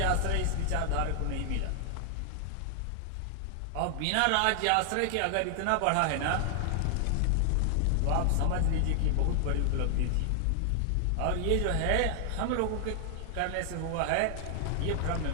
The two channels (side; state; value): both; different; correlation 0.00